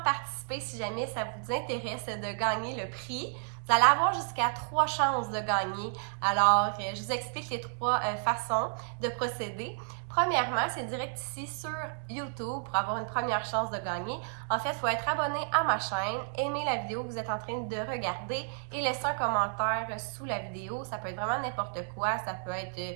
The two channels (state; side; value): silent; left; digital silence